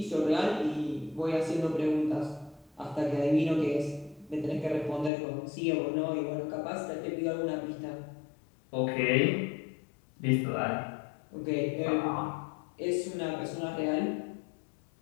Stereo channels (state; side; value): drops out; right; at 5.1 s